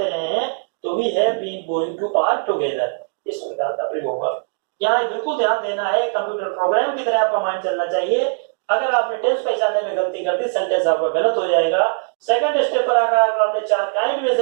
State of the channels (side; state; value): left; silent; digital silence